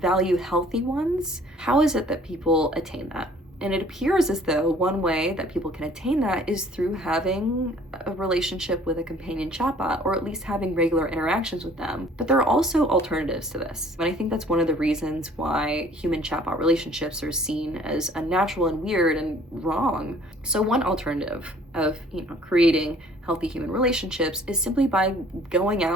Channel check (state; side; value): normal; both; correlation 0.55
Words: healthy ones, how is it that people attain that? And it appears as though one way that people can attain that is through having a relationship with a companion chatbot, or at least having regular interactions with them. But there are also alternatives to this. And I think that's one of the reasons why human chatbot relationships are seen as unnatural and weird and wrong. So one alternative of creating healthy human relationships is simply by going